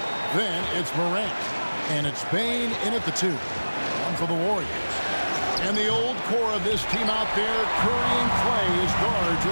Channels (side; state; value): both; inverted; correlation -1.00